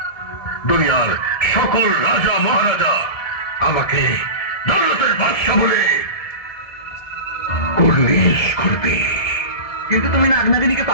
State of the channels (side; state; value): right; late; 1.7 ms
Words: দুনিয়ার সকল রাজা মহারাজা আমাকে দৌলতের বাদশা বলে কুর্নিশ করবে। কিন্তু তুমি নাগনাগিনীকে